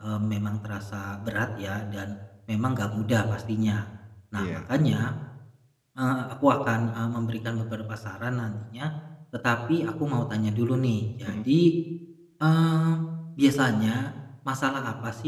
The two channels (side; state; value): both; identical; correlation 1.00